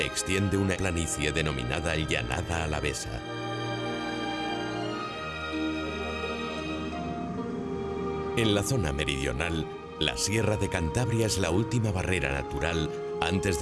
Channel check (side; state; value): both; identical; correlation 1.00